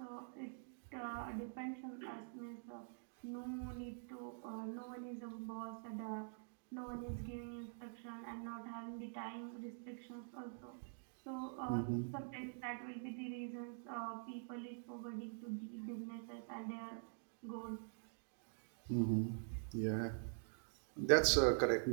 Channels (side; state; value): left; silent; digital silence